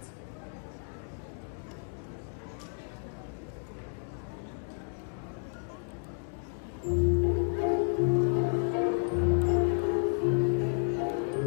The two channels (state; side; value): silent; right; 57 dB below the other